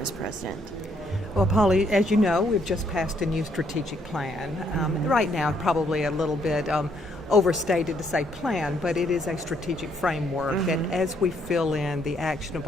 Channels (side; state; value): both; normal; correlation 0.70